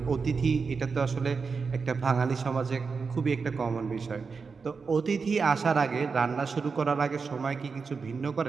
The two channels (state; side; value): quieter; left; 5.0 dB